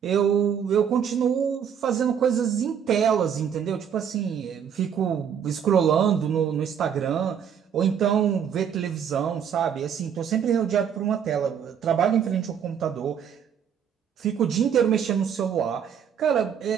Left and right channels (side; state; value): left; quieter; 8.1 dB